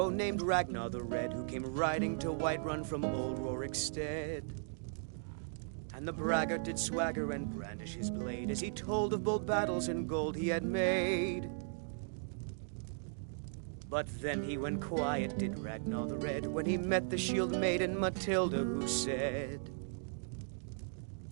named Ragnar the Red who came riding to Whiterun from old Rorikstead. And the braggart did swagger and brandish his blade as he told of bold battles and gold he had made. But then he went quiet, did Ragnar the Red, when he met the shield maiden Matilda, who said,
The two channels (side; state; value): left; silent; digital silence